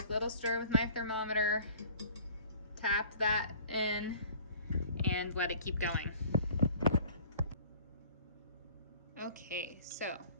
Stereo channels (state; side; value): inverted; both; correlation -0.49